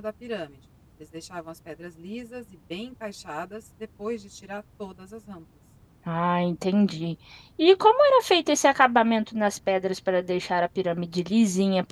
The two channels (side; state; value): both; identical; correlation 1.00